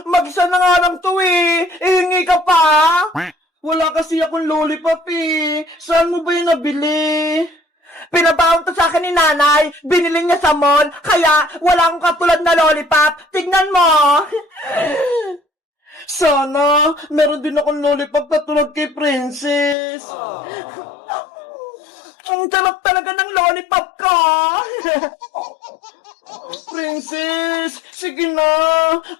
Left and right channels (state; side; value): drops out; right; at 19.8 s